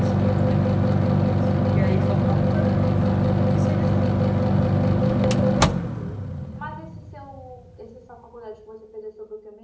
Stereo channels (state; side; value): identical; both; correlation 1.00